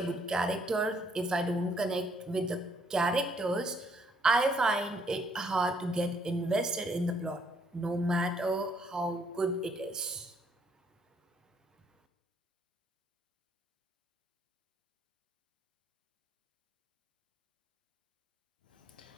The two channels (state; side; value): normal; both; correlation 0.68